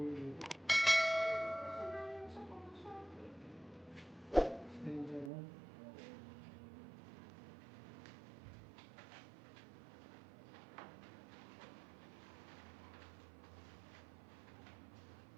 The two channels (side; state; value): left; drops out; at 5.3 s